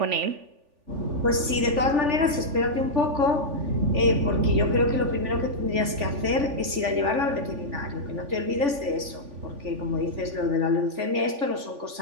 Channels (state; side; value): late; left; 3.5 ms